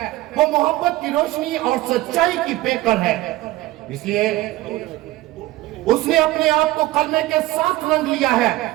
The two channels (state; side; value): quieter; left; 17.8 dB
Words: وہ محبت کی روشنی اور سچائی کی پیکر ہے۔ اس لیے اس نے اپنے آپ کو کلمے کے ساتھ رنگ لیا ہے،